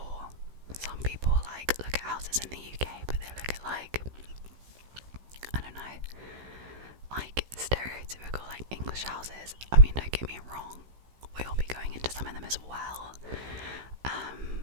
some people like look at houses in the UK but they look at like, I don't know, like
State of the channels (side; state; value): left; late; 16 ms